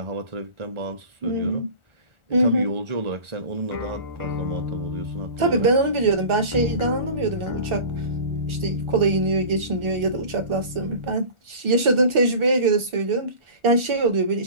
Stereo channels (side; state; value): left; late; 1.4 ms